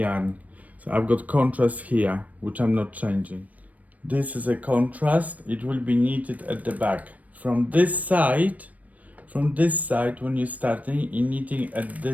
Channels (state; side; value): late; left; 0.071 ms